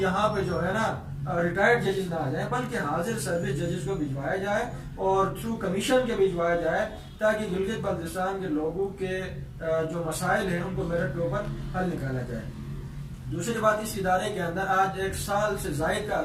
پہ جو ہے نا ریٹائرڈ ججز نہ آ جائیں، بلکہ حاضر سروس ججز کو بھجوایا جائے اور تھرو کمیشن کے بھجوایا جائے، تاکہ گلگت بلتستان کے لوگوں کے جو مسائل ہیں ان کو میرٹ کے اوپر حل نکالا جائے۔ دوسری بات، اس ادارے کے اندر آج 1 سال سے زائد کا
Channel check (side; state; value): both; identical; correlation 1.00